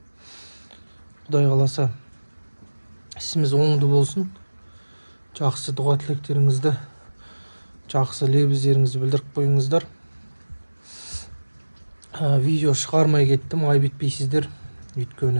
Құдай қаласа ісіміз оңды болсын. Жақсы дұға тілектеріңізді, жақсы лебіздеріңізді білдіріп қойыңыздар. Видео шығармай кеттім, айып етпейсіздер.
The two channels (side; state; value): both; inverted; correlation -1.00